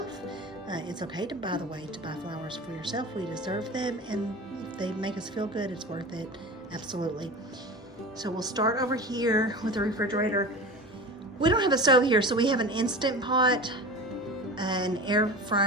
It's okay to buy flowers for yourself. We deserve them, and if they make us feel good, it's worth it. Absolutely. So we'll start over here with the refrigerator. We don't have a stove here, so we have an Instant Pot, an air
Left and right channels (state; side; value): normal; both; correlation 0.33